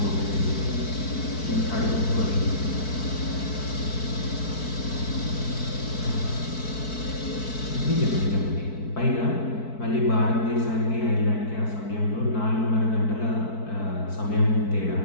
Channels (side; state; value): right; late; 4.6 ms